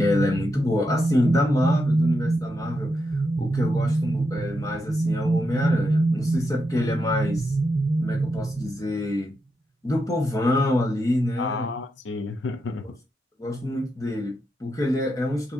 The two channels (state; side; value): normal; both; correlation 0.84